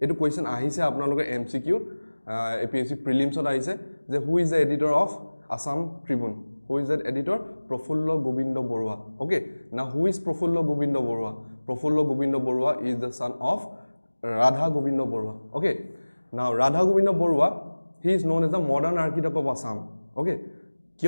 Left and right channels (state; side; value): inverted; both; correlation -1.00